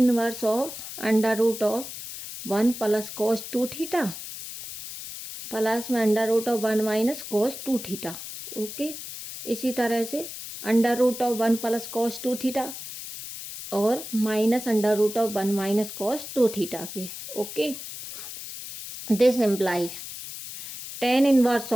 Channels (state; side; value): noise; left; hiss, 10 dB below the sound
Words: of under root of 1 plus cos 2 theta plus में under root of 1 minus cos 2 theta. Okay, इसी तरह से under root of 1 plus cos 2 theta और minus under root of 1 minus cos 2 theta के। Okay, this implies tan inverse